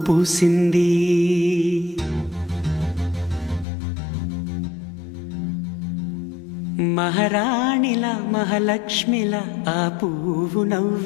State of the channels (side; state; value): right; drops out; at 3.7 s